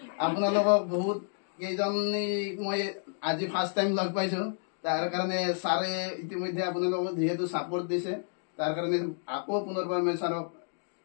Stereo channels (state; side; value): silent; right; digital silence